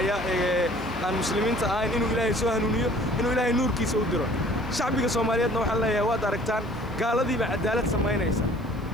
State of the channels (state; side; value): noise; right; hiss, 29 dB below the sound